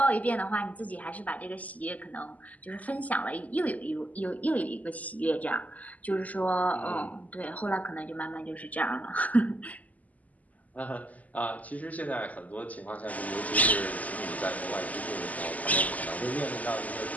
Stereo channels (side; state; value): right; late; 0.076 ms